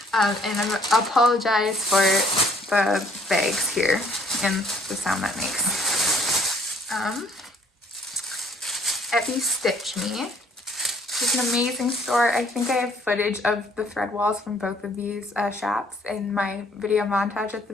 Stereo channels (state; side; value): normal; both; correlation 0.60